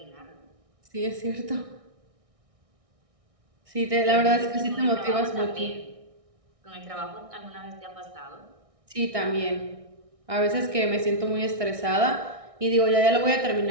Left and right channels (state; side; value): late; left; 1.6 ms